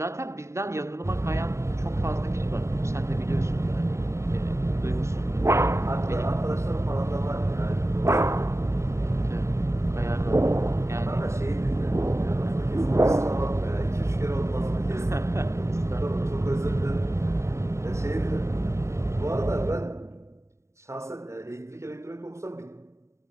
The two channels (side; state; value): left; late; 0.14 ms